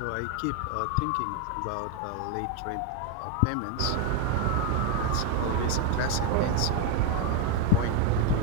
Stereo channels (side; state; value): both; different; correlation 0.01